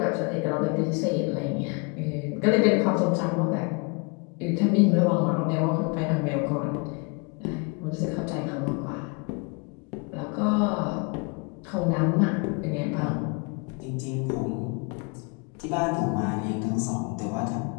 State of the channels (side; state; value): right; quieter; 32.3 dB